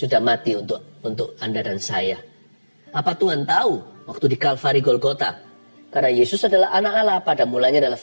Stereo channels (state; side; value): inverted; both; correlation -1.00